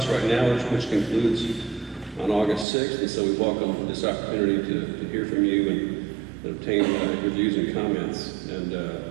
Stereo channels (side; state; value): left; drops out; at 2.7 s